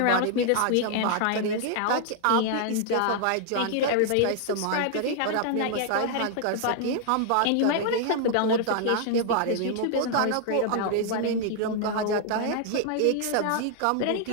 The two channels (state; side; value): different; both; correlation 0.00